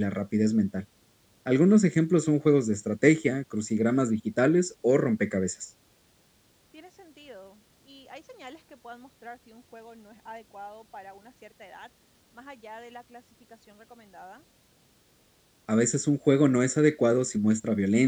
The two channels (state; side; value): identical; both; correlation 1.00